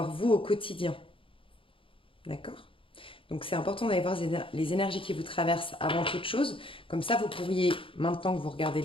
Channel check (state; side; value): late; right; 0.26 ms